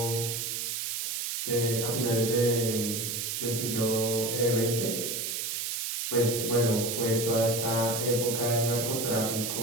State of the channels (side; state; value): right; noise; hiss, 2 dB below the sound